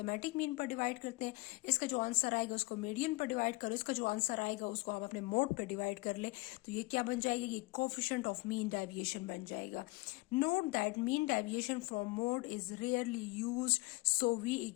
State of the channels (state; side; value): quieter; right; 23.1 dB